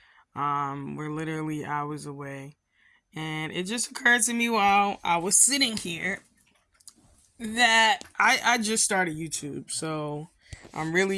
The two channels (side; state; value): both; identical; correlation 1.00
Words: We're literally hours away. And it just occurred to me while I was sitting here that I just started YouTube. So, I'm